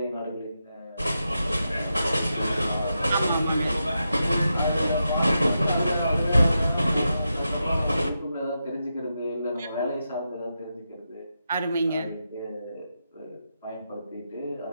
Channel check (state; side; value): inverted; both; correlation -0.87